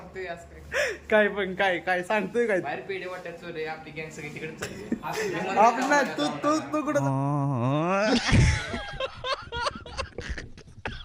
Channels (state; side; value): identical; both; correlation 1.00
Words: असं काय काय पण काय काय सांगतोय काय बाहेर पेढे वाटत चोरे आपली गँग सगळी तिकडे चालली आपलं तू तू तू कुठं